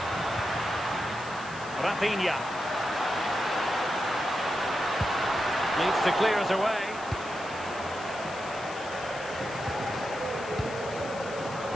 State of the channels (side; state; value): left; noise; hiss, 17 dB below the sound